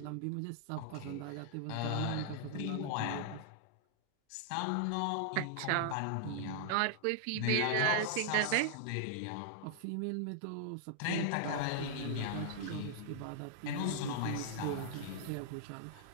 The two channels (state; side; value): different; both; correlation -0.01